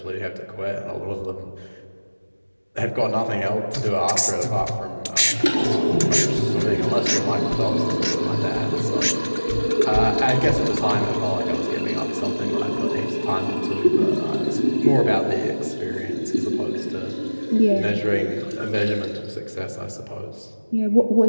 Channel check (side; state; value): both; inverted; correlation -1.00